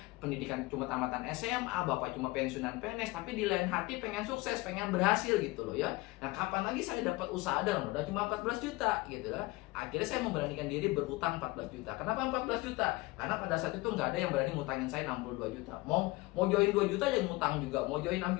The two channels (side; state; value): right; quieter; 21.9 dB